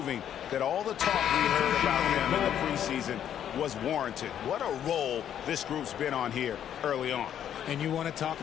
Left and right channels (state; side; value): quieter; right; 9.9 dB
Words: that all the talk we heard about them in the preseason was warranted. What a role this group's been on here early on. And you want to talk